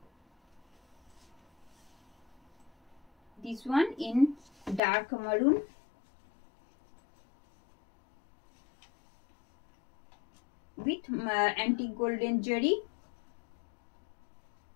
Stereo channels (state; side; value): drops out; right; at 4.8 s